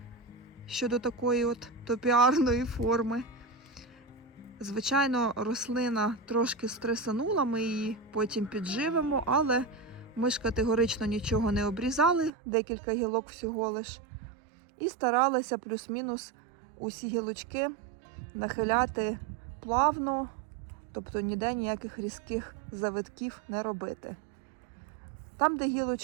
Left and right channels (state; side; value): drops out; left; at 12.3 s